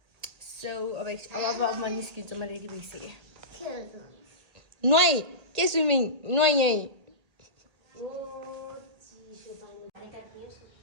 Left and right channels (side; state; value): left; late; 1.8 ms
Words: सो अब म निस्किन्छु म रेडी भइसकेँ नुहाइ के स्विमिङ नुहाइ यहीँ